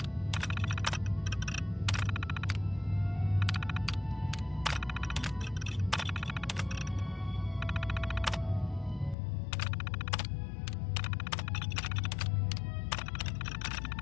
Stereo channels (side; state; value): right; drops out; at 9.2 s